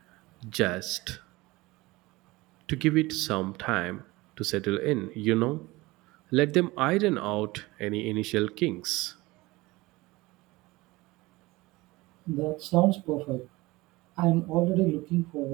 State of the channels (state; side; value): quieter; left; 21.2 dB